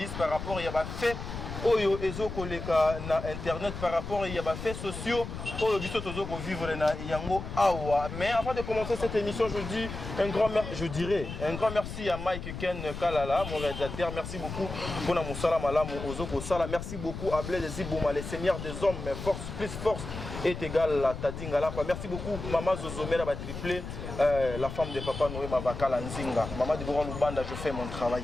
par rapport à fait. Oyo ezo koleka na internet par rapport à yaba faits sociaux oyo biso tozo ko vivre na yango awa. Mais avant de commencer cette émission, je dis un grand merci à Mike Ken Kalala, mon réalisateur. Merci beaucoup pour na musala malamu ozo ko sala. Merci beaucoup à Blaise Zibouma, les seigneurs des hommes, mais force plus force est égale à Tadi Ngalapa. Merci beaucoup Maman Zozomela ba triplé, la femme de Papa Noé Mavakala Nzinga. Maman Deborah Lubanda, je fais mon travail.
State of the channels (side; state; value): left; noise; rumble, 8 dB below the sound